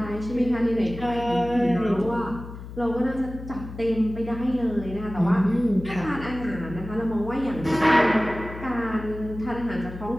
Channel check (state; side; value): noise; left; hum, 12 dB below the sound